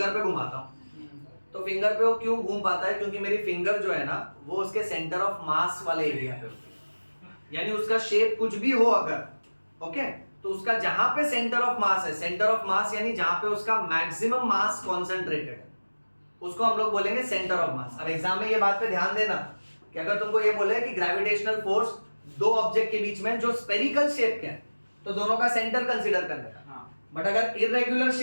पे घुमाता हूं, तो फिंगर पे वो क्यों घूम पाता है? क्योंकि मेरी फिंगर जो है ना वो उसके सेंटर ऑफ मास वाले एरिया पे होती है, यानी उसका शेप कुछ भी हो अगर, ओके, तो उसका जहां पे सेंटर ऑफ मास है, सेंटर ऑफ मास यानी जहां पे उसका मैक्सिमम मास कॉन्सेंट्रेटेड है, उसको हम लोग बोलेंगे सेंटर ऑफ मास। अब एग्जाम में ये बात पे ध्यान देना कि अगर तुमको ये बोले कि ग्रेविटेशनल फोर्स दो ऑब्जेक्ट के बीच में जो स्पेरिकल शेप के हैं तो दोनों का सेंटर कंसीडर करने का, बट अगर इरेगुलर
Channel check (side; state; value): both; inverted; correlation -1.00